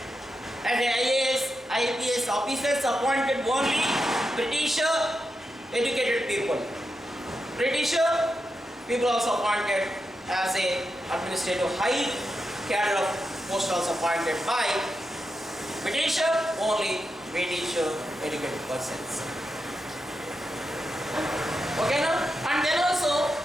And the IAS officers appointed only British educated people. British people also appointed as a administrative high cadre of post also appointed by British, only British educated persons. Okay, now, and then also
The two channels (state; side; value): normal; both; correlation 0.87